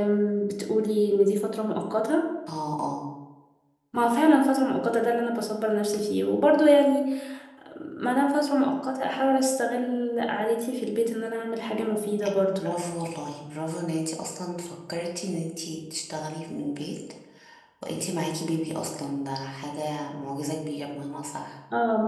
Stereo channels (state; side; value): identical; both; correlation 1.00